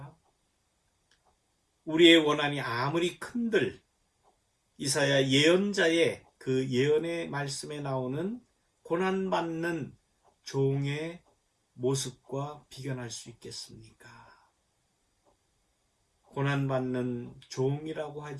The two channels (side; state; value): both; identical; correlation 1.00